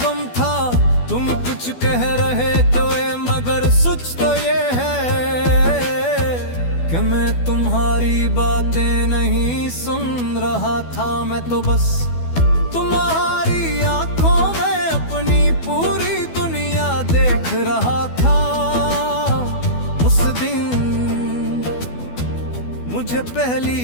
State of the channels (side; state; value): right; late; 12 ms